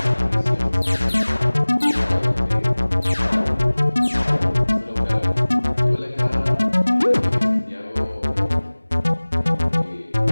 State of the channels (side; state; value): both; inverted; correlation -1.00